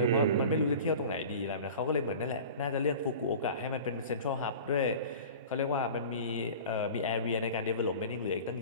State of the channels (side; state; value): both; inverted; correlation -0.38